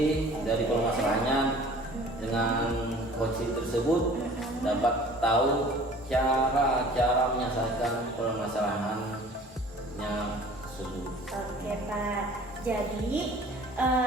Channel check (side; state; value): both; normal; correlation 0.48